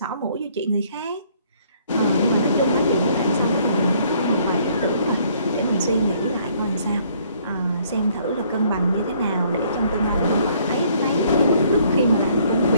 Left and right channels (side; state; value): both; inverted; correlation -0.63